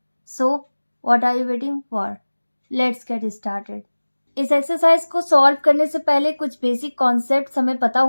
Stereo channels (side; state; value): both; inverted; correlation -1.00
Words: So what are you waiting for? Let's get started. इस एक्सरसाइज को सॉल्व करने से पहले कुछ बेसिक कॉन्सेप्ट हमें पता